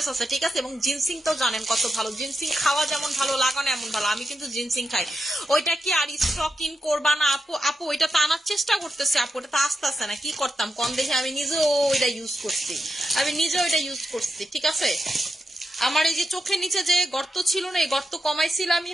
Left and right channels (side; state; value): both; normal; correlation 0.87